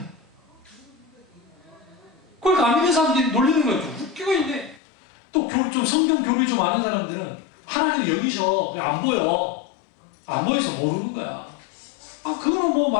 그러니까 안 믿는 사람들이 놀리는 거예요. 웃기고 있네. 또 좀 성경 교리 좀 아는 사람들은 하나님 여기셔. 안 보여. 안 보여서 모르는 거야. 아, 그거는 뭐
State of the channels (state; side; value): drops out; right; at 4.8 s